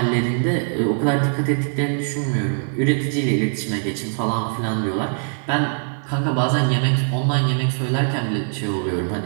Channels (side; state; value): left; silent; 64 dB below the other